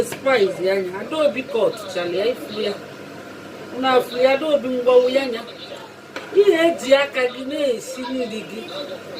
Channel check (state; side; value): identical; both; correlation 1.00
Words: spice anya. Adaobi kọt chali ya ifu ya. Una afu ya Adaobi ngwawu ya nya. Ihe eji aka gị na-esi nri gị